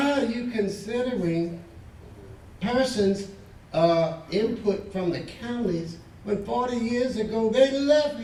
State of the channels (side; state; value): both; identical; correlation 1.00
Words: are you considering persons' input from the counties when 40 years ago they left